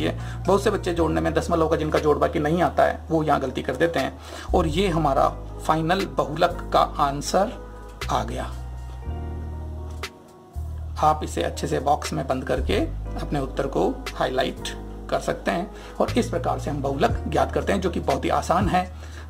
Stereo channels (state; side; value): identical; both; correlation 1.00